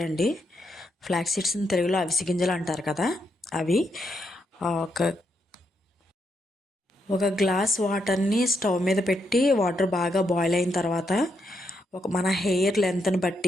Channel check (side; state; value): both; normal; correlation 0.80